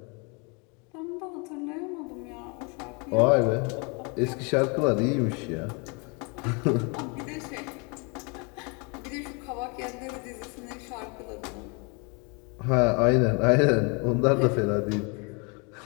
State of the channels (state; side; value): quieter; right; 32.4 dB